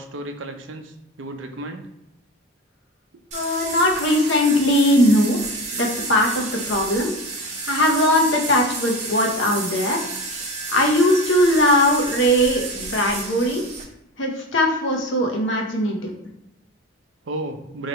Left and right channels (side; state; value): both; normal; correlation 0.26